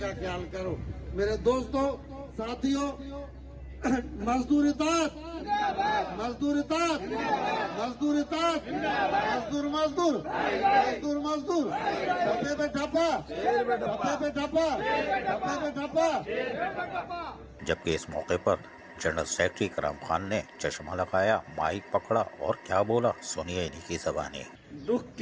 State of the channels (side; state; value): both; identical; correlation 1.00